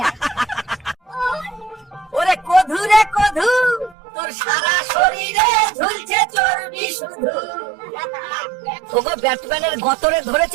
ওরে কধু রে কধু, তোর সারা শরীরে ঝুলছে চর্বি শুধু। ওগো ব্যাটম্যানের গতরে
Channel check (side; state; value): left; drops out; at 4.0 s